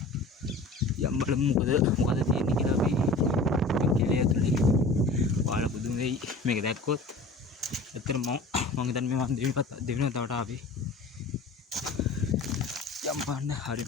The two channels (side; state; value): right; quieter; 3.1 dB